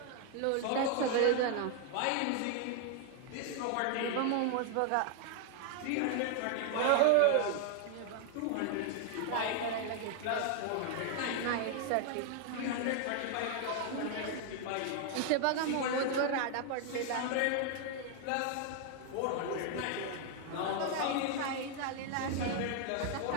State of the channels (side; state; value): both; different; correlation 0.00